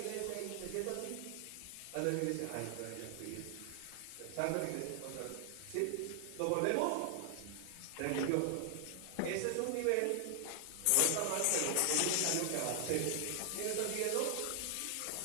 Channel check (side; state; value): both; different; correlation 0.00